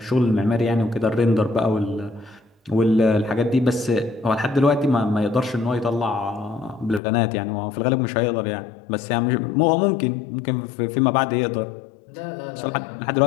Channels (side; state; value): right; drops out; at 7.0 s